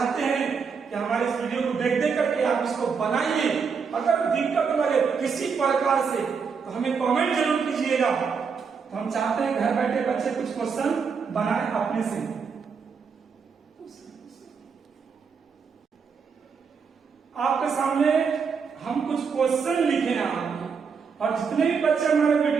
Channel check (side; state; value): left; quieter; 5.8 dB